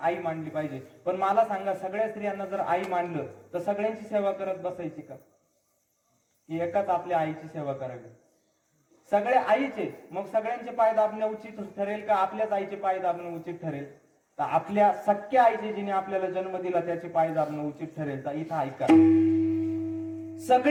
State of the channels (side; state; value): both; identical; correlation 1.00